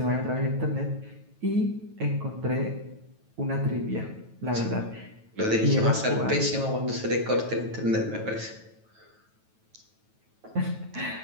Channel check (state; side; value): late; left; 9.2 ms